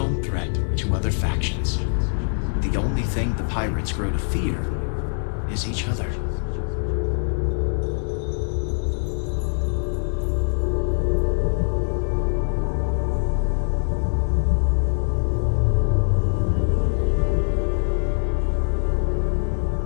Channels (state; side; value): silent; right; 63 dB below the other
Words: threat to other factions. The only thing the pirates grow to fear is each other.